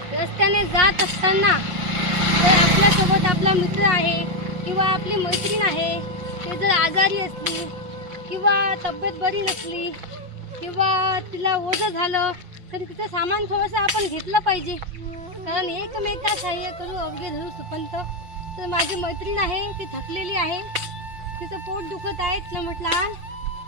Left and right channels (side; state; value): left; late; 5.5 ms